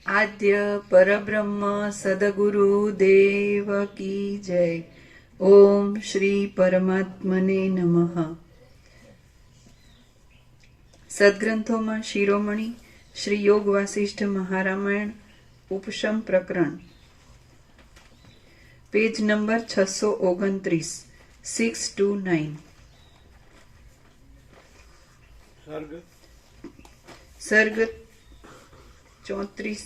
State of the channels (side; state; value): both; identical; correlation 1.00